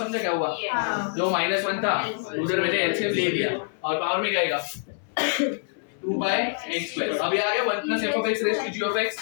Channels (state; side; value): silent; right; 61 dB below the other